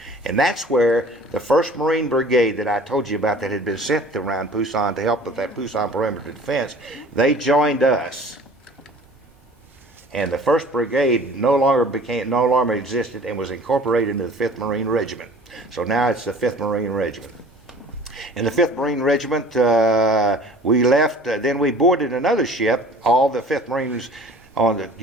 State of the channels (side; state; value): both; normal; correlation 0.47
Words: And that's where the 1st Marine Brigade that I told you about that had been sent around Pusan to help with that Pusan perimeter defense, they joined us. And the 1st Brigade no longer existed and was incorporated into the 5th Marine Regiment. So now it's the 5th Marine Regiment. In the 5th Marine Regiment, we left, then we boarded another ship, all the 5th Marines on the